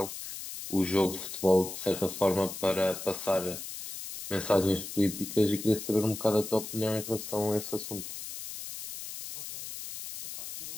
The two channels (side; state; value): left; noise; hiss, 9 dB below the sound